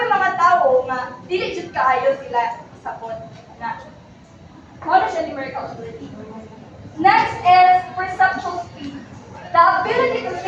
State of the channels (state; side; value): identical; both; correlation 1.00